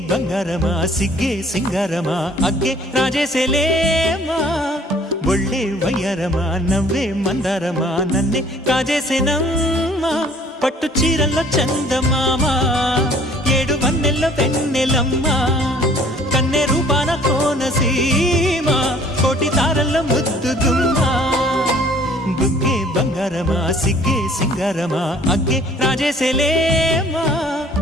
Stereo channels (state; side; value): normal; both; correlation 0.55